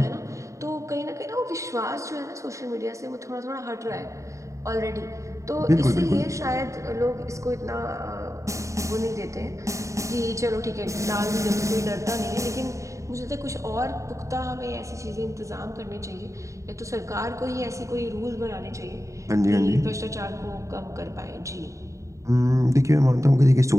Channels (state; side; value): late; left; 0.15 ms